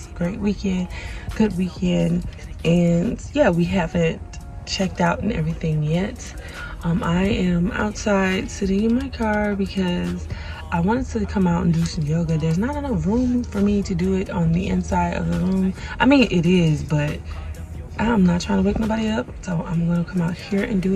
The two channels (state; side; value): identical; both; correlation 1.00